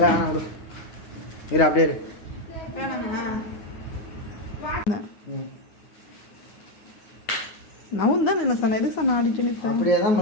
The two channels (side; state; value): right; late; 9.6 ms